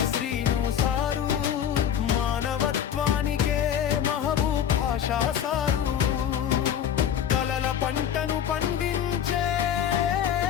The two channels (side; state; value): right; quieter; 9.2 dB